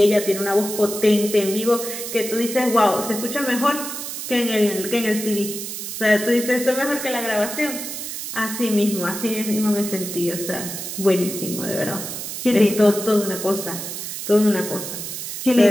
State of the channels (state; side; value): noise; right; hiss, 7 dB below the sound